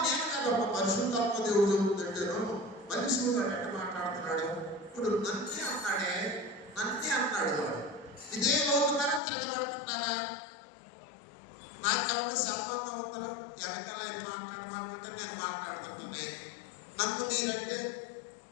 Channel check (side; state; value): right; drops out; at 9.2 s